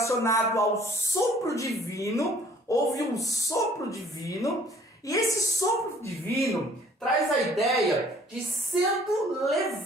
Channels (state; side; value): normal; both; correlation 0.56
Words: ao sopro divino. Houve um sopro divino, e esse sopro divino traz a ideia de sendo